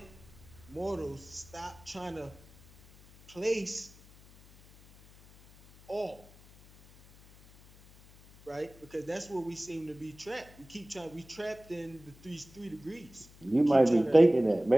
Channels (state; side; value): noise; left; hum, 24 dB below the sound